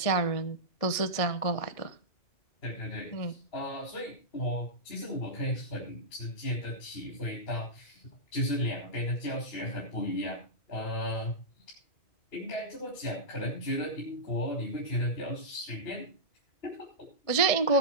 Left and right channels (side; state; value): right; late; 1.7 ms